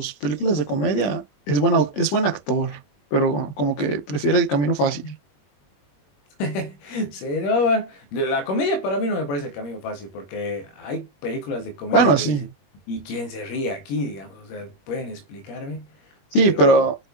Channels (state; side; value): late; right; 20 ms